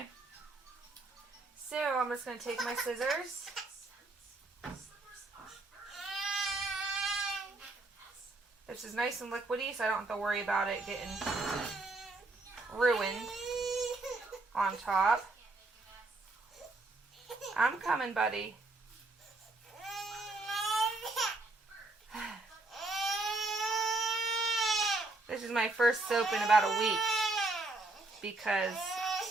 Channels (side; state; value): left; quieter; 3.1 dB